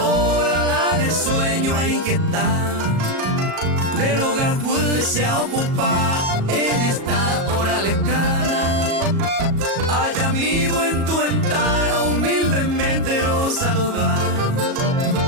la de sueño a inquietar del hogar pues se ocupa en esta hora lejana allá vivo en tu ventana humildemente lo saludar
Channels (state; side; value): late; left; 37 ms